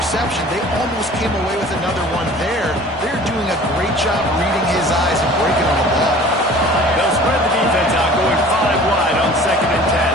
They almost came away with another one there. They're doing a great job reading his eyes and breaking on the ball. They'll spread the defense out, going 5 wide on 2nd and 10.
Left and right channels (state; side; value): normal; both; correlation 0.46